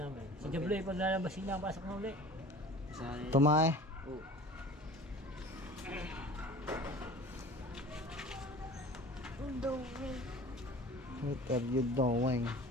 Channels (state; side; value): normal; both; correlation 0.42